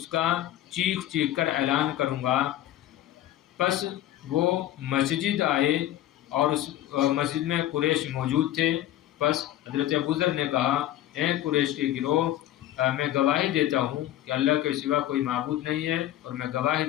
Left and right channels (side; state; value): right; quieter; 13.2 dB